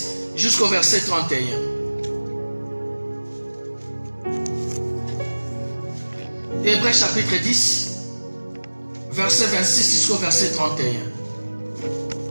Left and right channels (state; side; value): inverted; both; correlation -1.00